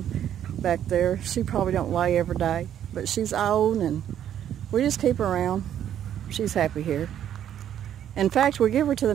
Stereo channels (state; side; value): quieter; left; 10.3 dB